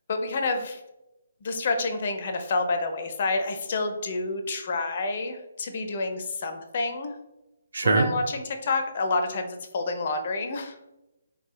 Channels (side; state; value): both; inverted; correlation -0.74